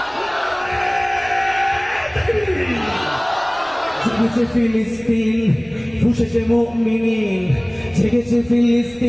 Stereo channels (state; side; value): noise; right; rumble, 25 dB below the sound